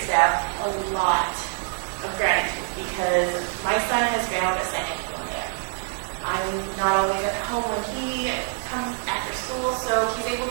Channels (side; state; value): left; silent; digital silence